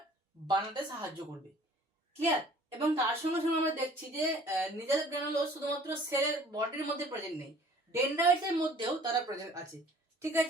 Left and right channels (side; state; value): both; normal; correlation 0.52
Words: বানাতে সাহায্য করবে। ক্লিয়ার? এবং তার সঙ্গে সঙ্গে আমরা দেখছি যে নিজেল গ্র্যানুলোস শুধুমাত্র সেলের বডির মধ্যে প্রেজেন্ট নেই, ডেনড্রাইটস এর মধ্যেও তারা প্রেজেন্ট আছে। ঠিক